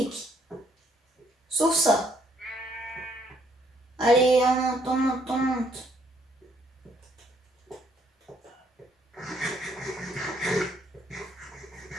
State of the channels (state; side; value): normal; both; correlation 0.68